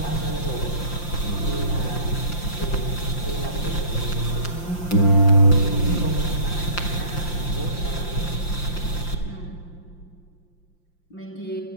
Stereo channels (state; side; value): late; right; 5.8 ms